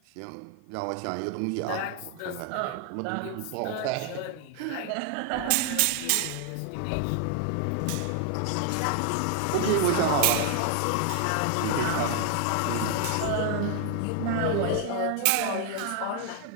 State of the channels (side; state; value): both; different; correlation 0.00